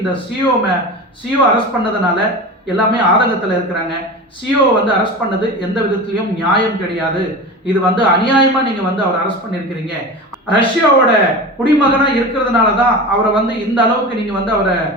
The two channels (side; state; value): both; normal; correlation 0.29